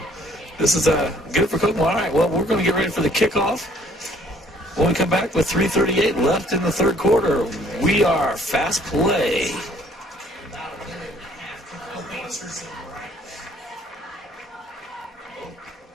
this is good for Kokomo. All right, well, we're going to get ready for the kickoff. When we come back with 3:38 left in the third quarter, we are Fast Play.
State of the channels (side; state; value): both; normal; correlation 0.60